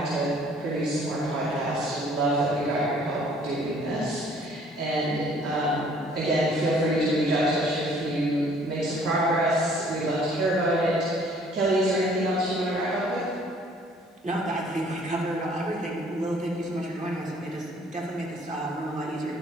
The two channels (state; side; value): normal; both; correlation 0.58